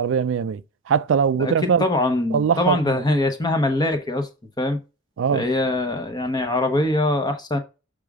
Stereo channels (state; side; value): normal; both; correlation 0.25